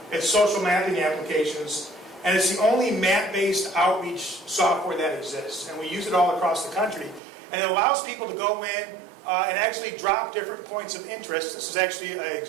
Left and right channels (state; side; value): drops out; left; at 7.2 s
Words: It's social mapping applications, and it's the only map-based outreach software that exists. And we use it all across the country. And it allows people to go in and actually drop different points of interest. This is actually